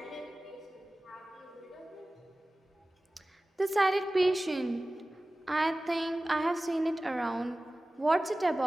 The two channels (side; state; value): both; normal; correlation 0.97